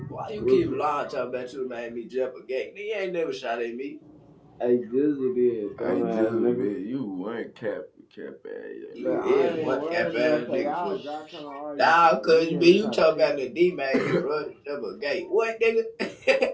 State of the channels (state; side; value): identical; both; correlation 1.00